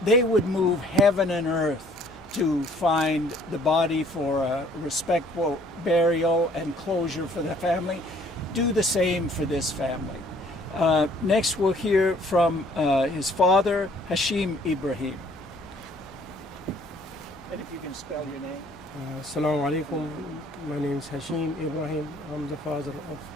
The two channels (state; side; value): normal; both; correlation 0.59